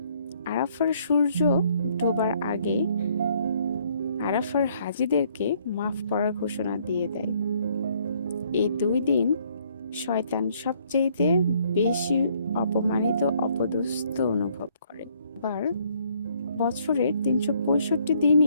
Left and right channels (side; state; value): both; inverted; correlation -0.66